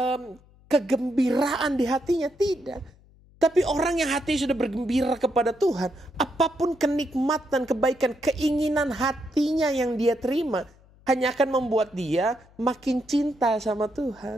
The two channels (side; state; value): left; noise; hum, 28 dB below the sound